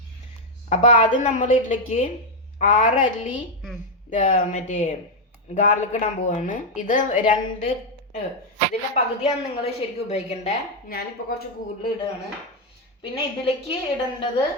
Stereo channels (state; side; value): normal; both; correlation 0.02